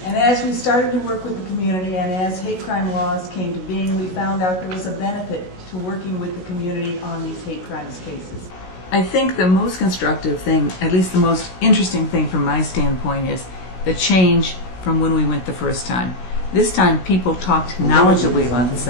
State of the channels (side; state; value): right; late; 16 ms